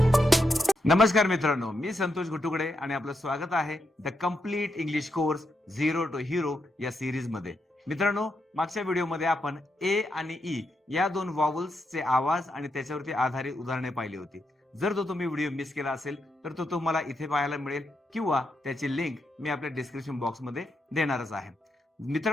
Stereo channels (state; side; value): normal; both; correlation 0.83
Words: नमस्कार मित्रांनो, मी संतोष घुटुकडे आणि आपलं स्वागत आहे the complete English course zero to hero या सिरीज मध्ये. मित्रांनो, मागच्या व्हिडिओमध्ये आपण ए आणि ई या दोन वॉवल्सचे आवाज आणि त्याच्यावरती आधारित उदाहरणे पाहिली होती. जर तो तुम्ही व्हिडिओ मिस केला असेल तर तो तुम्हाला इथे पाहायला मिळेल किंवा त्याची लिंक मी आपल्या डिस्क्रिप्शन बॉक्स मध्ये देणारच आहे.